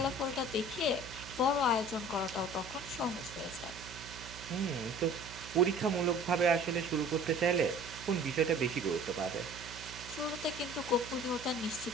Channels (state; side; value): noise; right; hum, 15 dB below the sound